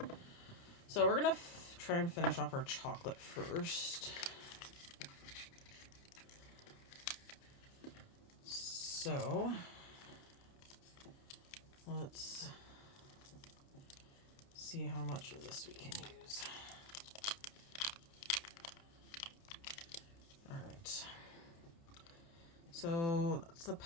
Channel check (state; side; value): late; right; 29 ms